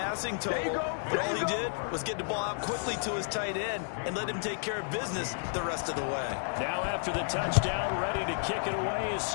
total, but all he did was get the ball out quickly to his tight end and let him take care of business the rest of the way. Now after the touchdown, ready to kick it away is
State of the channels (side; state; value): right; silent; digital silence